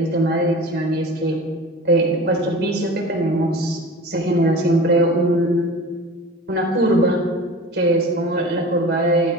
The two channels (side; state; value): both; normal; correlation 0.37